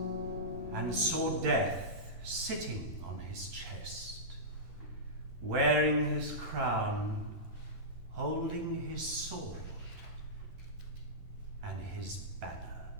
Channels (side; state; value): left; late; 10 ms